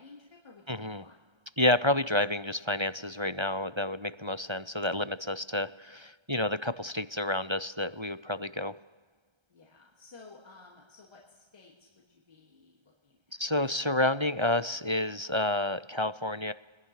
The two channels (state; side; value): late; left; 1.3 ms